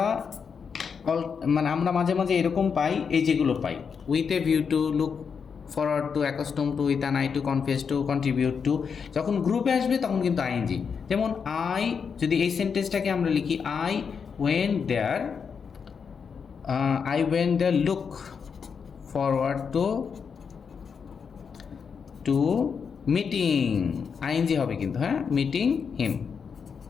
মানে আমরা মাঝে মাঝে এরকম পাই, এই যেগুলো পাই, with a view to, look forward to, accustom to, with an eye to, confess to, contribute to, যখন গ্রুপে আসবে তখন কিন্তু আইএনজি। যেমন আই, যদি এই সেন্টেন্সটাকে আমরা লিখি I went there, look forward to meeting, ING হবে কিন্তু, হ্যাঁ, মিটিং হিম।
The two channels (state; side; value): quieter; right; 6.2 dB